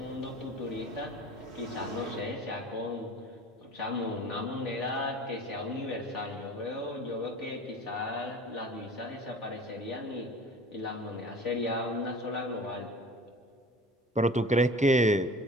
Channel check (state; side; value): normal; both; correlation 0.42